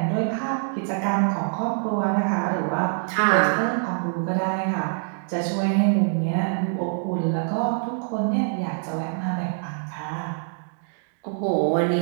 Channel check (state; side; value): silent; left; digital silence